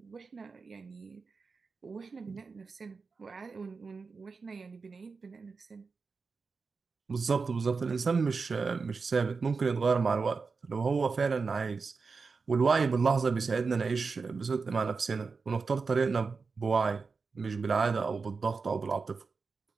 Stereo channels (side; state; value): left; quieter; 4.7 dB